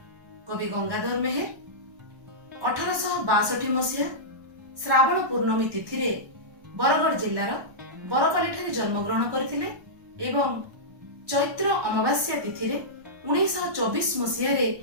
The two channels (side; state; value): left; late; 1.2 ms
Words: कवि गंगाधर मेहर 1862 मसीहा श्रावण पूर्णमी तिथि रे बरगढ़ जिल्लार बरपाली ठारे जन्म ग्रहण करथिले एवं चैत्र अमावास्या तिथि रे 1924 मसीहा रे